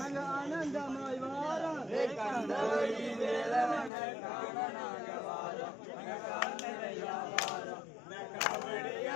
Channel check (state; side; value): drops out; right; at 3.9 s